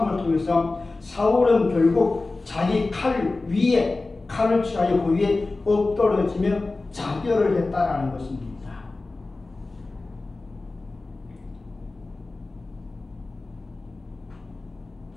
통해서 사울은 결국 자기 칼 위에 칼을 취하여 그 위에 엎드러지며 자결을 했다라는 것입니다.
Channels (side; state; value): right; quieter; 3.4 dB